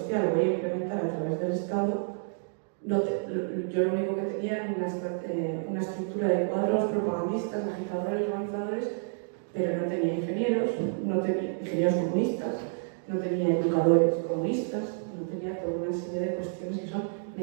voy a implementar a través del Estado, yo lo único que tenía era una estructura de cuadros propagandistas, agitadores, organizadores, pero no tenía ingenieros, no tenía ingenieros comunistas, no tenía educadores comunistas, no tenía toda una serie de cuestiones que son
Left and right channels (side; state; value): left; silent; digital silence